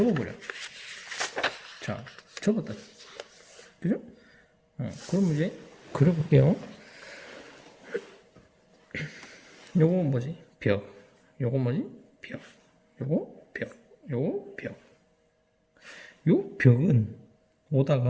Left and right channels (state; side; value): identical; both; correlation 1.00